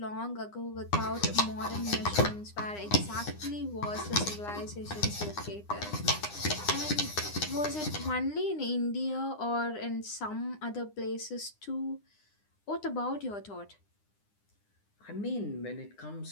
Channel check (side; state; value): right; late; 9.8 ms